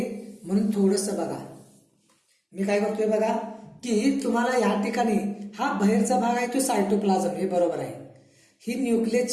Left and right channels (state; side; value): identical; both; correlation 1.00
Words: म्हणून थोडस बघा. मी काय करतोय बघा की तुम्हाला या ठिकाणी हा बाहेरचा भाग आहे तो सायटोप्लाझम, हे बरोबर आहे. ही